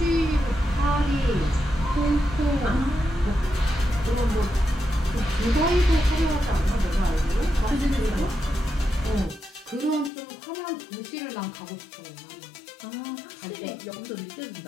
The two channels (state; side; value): drops out; right; at 10.1 s